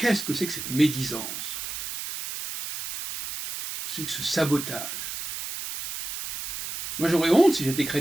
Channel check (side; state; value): right; noise; hiss, 6 dB below the sound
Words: que c'est que cette médisance? C'est que ce sabotage. Moi j'aurais honte si j'étais